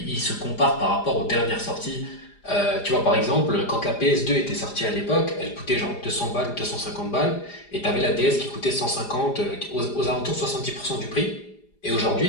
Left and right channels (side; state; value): right; late; 4.9 ms